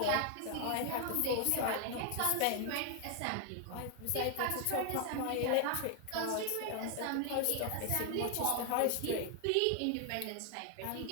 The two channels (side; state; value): both; different; correlation 0.00